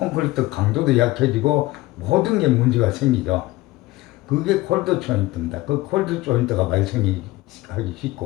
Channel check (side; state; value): right; quieter; 18.8 dB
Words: 강도도 약해지고 모든 게 문제가 생기죠. 그게 콜드 조인트입니다. 그 콜드 조인트가 발생하기